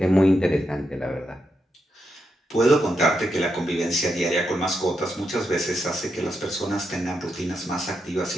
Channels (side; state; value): both; normal; correlation 0.84